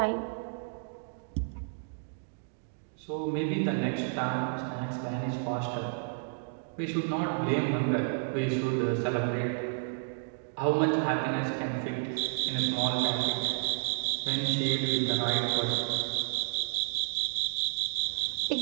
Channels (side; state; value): left; silent; digital silence